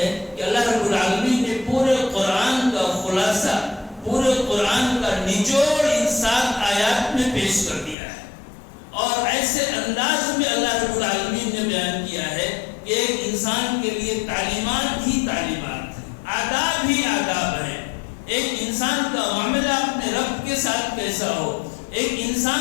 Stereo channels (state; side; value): drops out; right; at 8.0 s